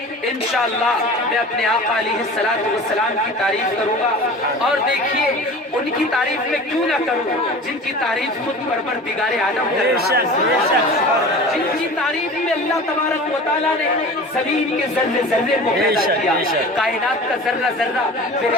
انشاءاللہ میں اپنے آقا علیہ السلام کی تعریف کروں گا. اور دیکھیے ان کی تعریف میں کیوں نہ کروں جن کی تعریف خود پروردگار عالم کر رہا ہے, جن کی تعریف میں اللہ تبارک و تعالیٰ نے زمین کے ذرے ذرے کو پیدا کیا, کائنات کا ذرہ ذرہ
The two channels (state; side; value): normal; both; correlation 0.38